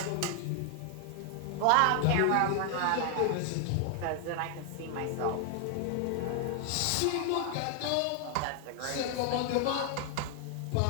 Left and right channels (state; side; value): different; both; correlation 0.00